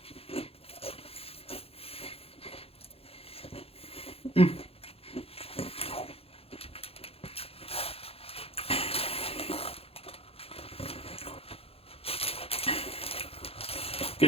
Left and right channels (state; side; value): late; right; 0.28 ms